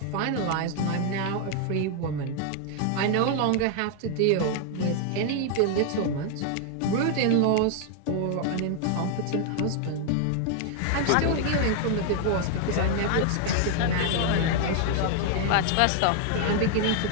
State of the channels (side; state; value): both; different; correlation 0.00